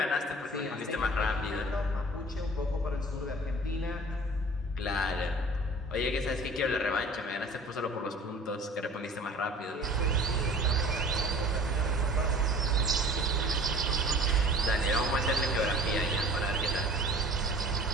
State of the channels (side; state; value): both; normal; correlation 0.46